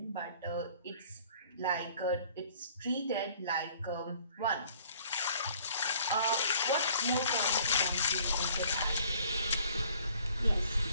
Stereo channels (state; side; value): inverted; both; correlation -0.56